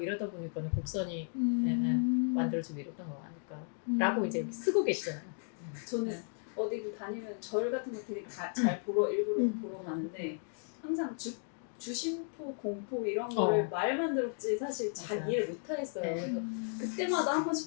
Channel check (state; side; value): silent; right; 55 dB below the other